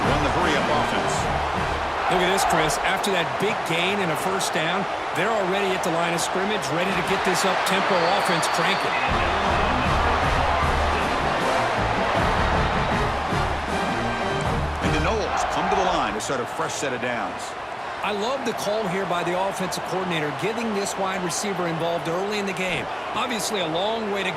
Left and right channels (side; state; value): both; identical; correlation 1.00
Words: run the hurry-up offense. Look at this, Chris. After that big gain and a first down, they're already at the line of scrimmage, ready to get this up-tempo offense cranking. And the Noles come to the line to start a fresh set of downs. I love the call here by the offensive coordinator, getting this wide receiver involved early in the game. Obviously a long way to